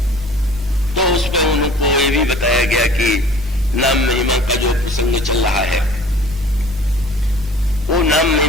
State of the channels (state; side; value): normal; both; correlation 0.48